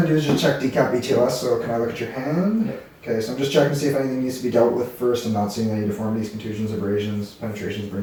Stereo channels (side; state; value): both; identical; correlation 1.00